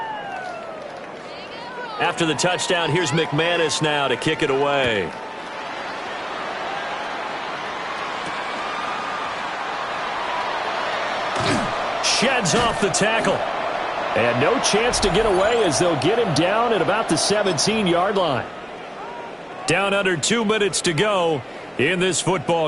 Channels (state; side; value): identical; both; correlation 1.00